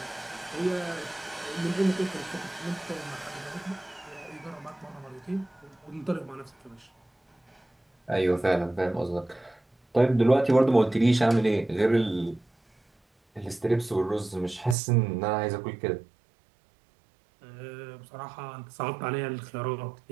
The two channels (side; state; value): left; drops out; at 14.8 s